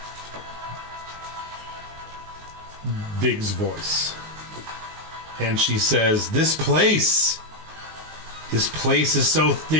Vig's voice. And she says, This place is so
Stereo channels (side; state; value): left; late; 19 ms